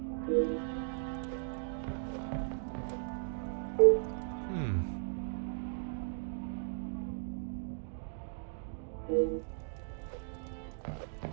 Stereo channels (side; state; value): left; silent; digital silence